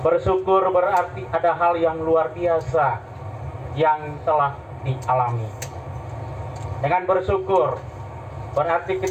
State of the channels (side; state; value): both; identical; correlation 1.00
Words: berarti ada hal yang luar biasa yang telah dialami. Dengan bersyukur berarti